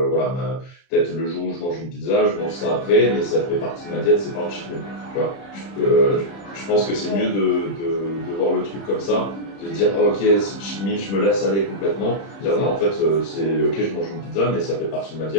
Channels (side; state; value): right; late; 30 ms